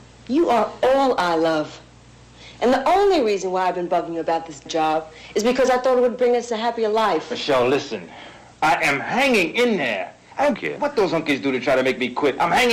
You are all I love. And the only reason why I've been bugging you about this job is because I thought it would bring us a happier life. Michelle, listen. I am hanging in there. I don't care what those hunkies do to try to make me quit. I'm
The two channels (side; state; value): both; identical; correlation 1.00